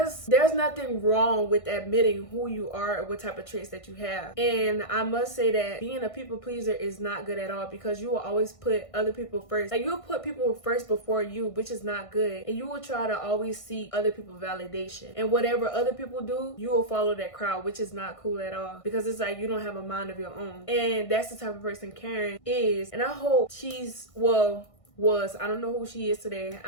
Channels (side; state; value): right; late; 1.6 ms